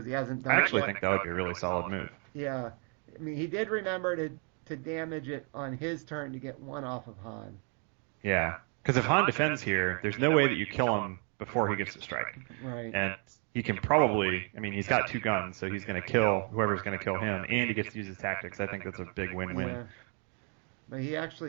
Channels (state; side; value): quieter; left; 38.6 dB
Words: he hasn't I done it actually yet. think that would be a really solid move. Yeah. I mean, he did remember to damage it on his turn to get one off of Han. Yeah, because if Han defends here, there's no way that you kill him before he gets to strike. Right. And he can probably, I mean, he's got 2 guns, so he's going to kill whoever's going to kill him, and he gets to use his tactics. I think that's a big win-win. Yeah. But he